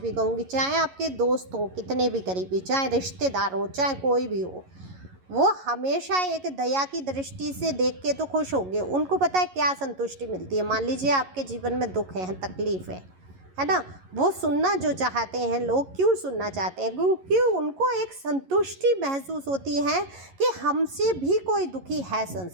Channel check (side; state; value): left; late; 11 ms